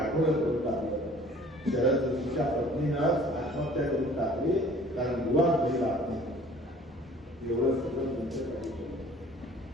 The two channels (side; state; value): both; normal; correlation 0.51